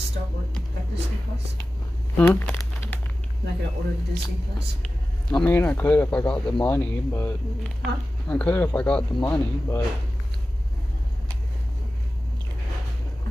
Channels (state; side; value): normal; both; correlation 0.95